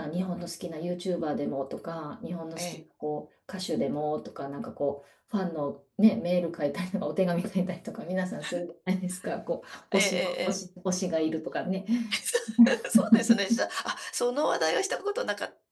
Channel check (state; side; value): identical; both; correlation 1.00